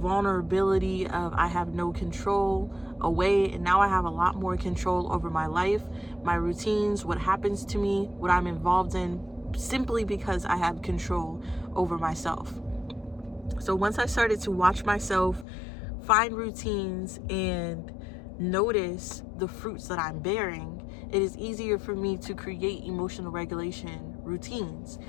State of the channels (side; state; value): right; drops out; at 15.5 s